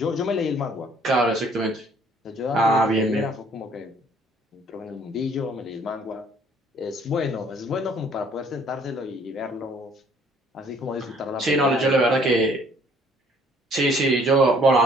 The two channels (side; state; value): both; normal; correlation 0.60